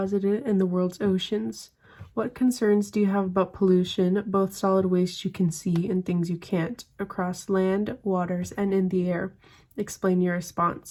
in the world's oceans. What concerns do you have about pollution, both solid waste you can see and things you can't, across land, waters, and in the air? Explain your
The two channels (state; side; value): identical; both; correlation 1.00